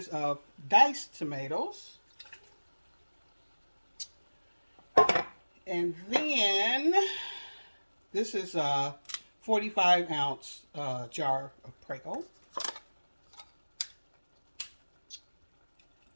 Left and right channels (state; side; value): inverted; both; correlation -1.00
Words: of diced tomatoes. And then this is a 45-ounce jar of Prego.